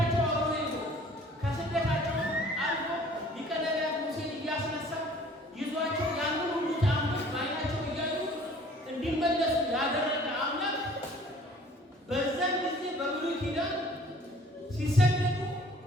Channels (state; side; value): normal; both; correlation 0.52